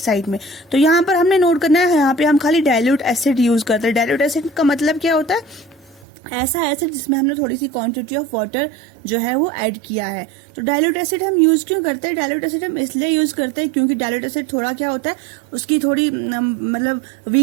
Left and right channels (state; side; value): drops out; left; at 6.1 s